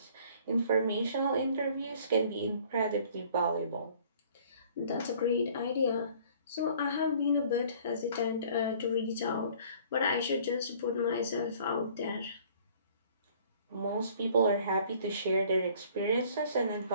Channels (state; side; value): inverted; both; correlation -0.54